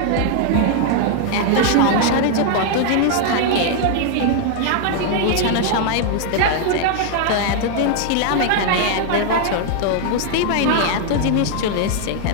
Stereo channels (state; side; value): different; both; correlation 0.00